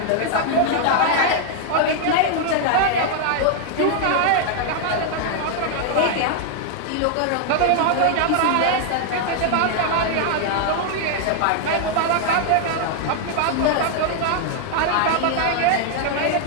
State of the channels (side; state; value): both; different; correlation 0.00